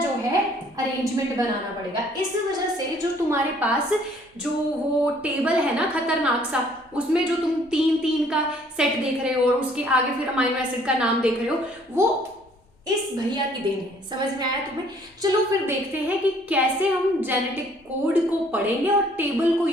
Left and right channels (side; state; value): both; normal; correlation 0.60